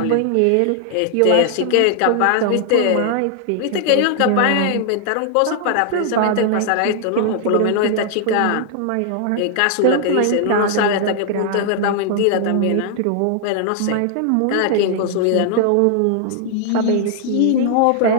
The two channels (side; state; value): both; different; correlation 0.00